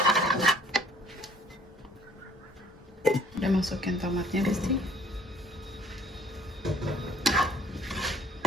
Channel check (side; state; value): both; normal; correlation 0.57